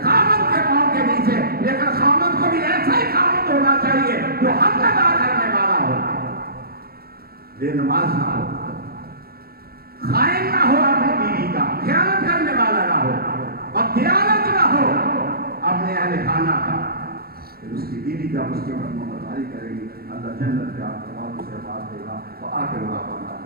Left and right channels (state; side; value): late; left; 0.44 ms